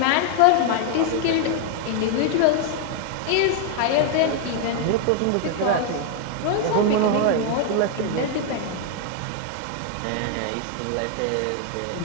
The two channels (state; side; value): different; both; correlation 0.00